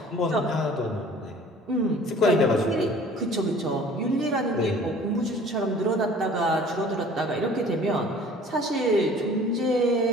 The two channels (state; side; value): normal; both; correlation 0.49